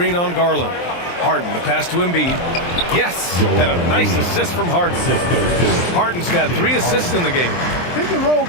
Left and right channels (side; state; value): right; late; 23 ms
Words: on Garland. Harden, the pass to Embiid. Yes, and a nice assist from Harden. Harden's got 3 assists in the game. Pick and roll